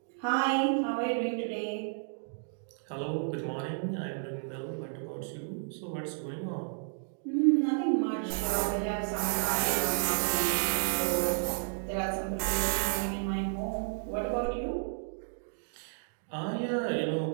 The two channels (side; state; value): left; silent; digital silence